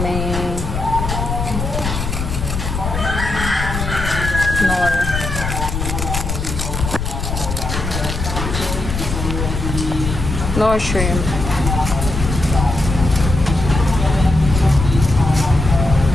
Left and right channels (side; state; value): left; noise; rumble, 4 dB below the sound